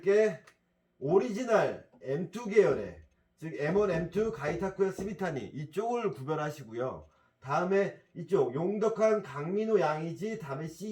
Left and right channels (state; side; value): identical; both; correlation 1.00